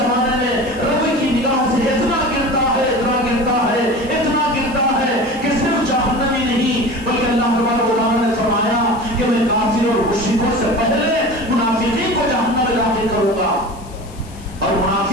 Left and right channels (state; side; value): noise; left; hiss, 23 dB below the sound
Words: میں رب کی نگاہ سے اتنا گرتا ہے کہ صرف جہنمی نہیں بلکہ اللہ تبارک و تعالیٰ نے فرمایا کہ میں کافر اور مشرکوں سے پہلے منافقین کو جہنم میں داخل کروں گا اور